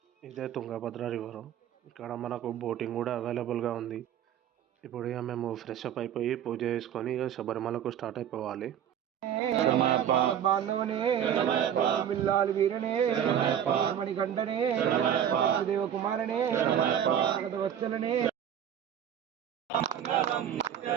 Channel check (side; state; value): left; quieter; 9.5 dB